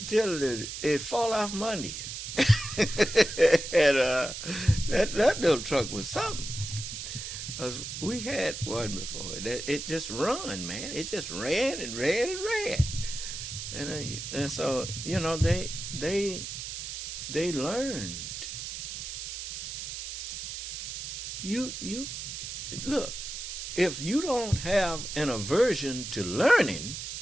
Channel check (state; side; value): noise; right; hiss, 7 dB below the sound